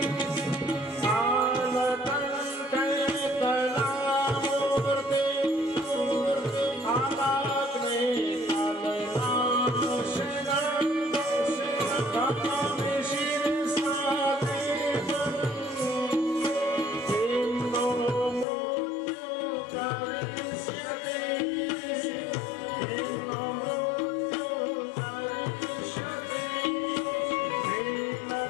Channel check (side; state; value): right; drops out; at 18.4 s